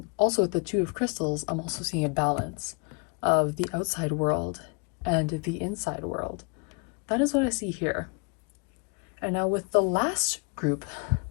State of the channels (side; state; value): right; quieter; 33.0 dB